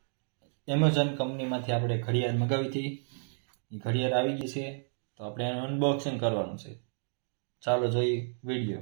એમેઝોન કંપનીમાંથી આપણે ઘડિયાળ મગાવી હતી, એ ઘડિયાળ આવી ગઈ છે. તો આપણે એનું અનબોક્સિંગ કરવાનું છે. ચાલો જોઈએ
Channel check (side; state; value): left; silent; digital silence